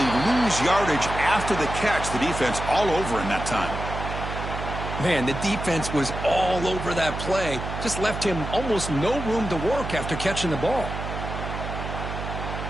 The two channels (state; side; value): noise; right; hum, 6 dB below the sound